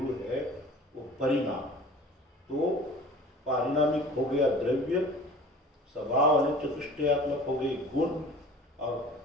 है, वो परिणाम। तो पारिणामिक हो गया द्रव्य, स्वभाव अनंत चतुष्टयात्मक हो गई गुण, और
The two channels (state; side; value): normal; both; correlation 0.44